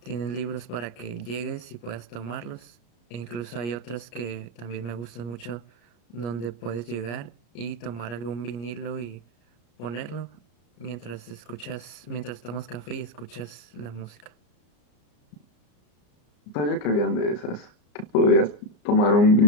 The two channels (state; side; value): late; right; 34 ms